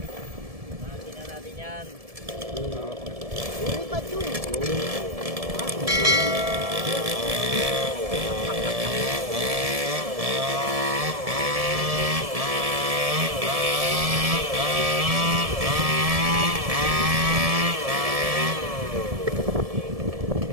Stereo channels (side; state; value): left; late; 1.7 ms